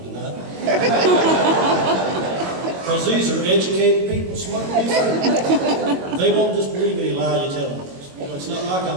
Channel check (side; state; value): left; late; 22 ms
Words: tonight. Because these are educated people, smart people. They won't just believe any lie you tell them. You know, it's not like